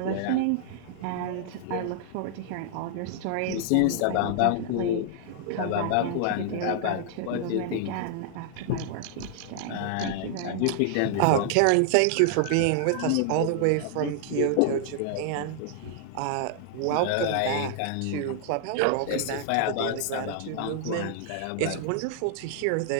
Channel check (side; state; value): both; different; correlation -0.01